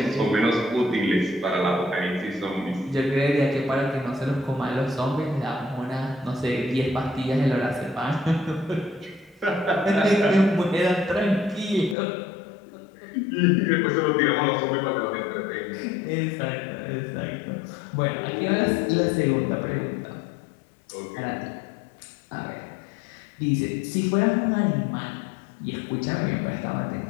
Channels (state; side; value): drops out; right; at 12.0 s